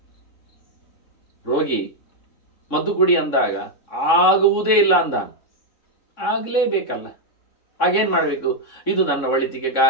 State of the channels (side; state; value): right; late; 3.6 ms